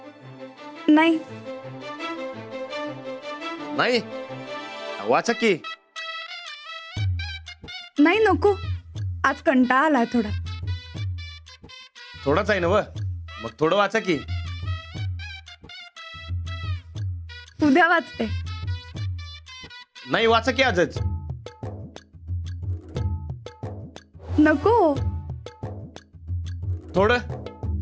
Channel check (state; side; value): identical; both; correlation 1.00